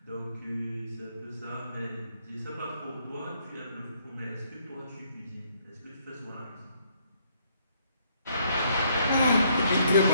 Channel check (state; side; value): inverted; both; correlation -0.69